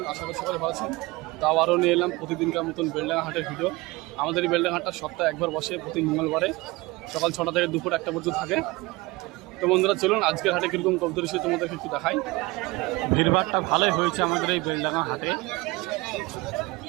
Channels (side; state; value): left; quieter; 22.4 dB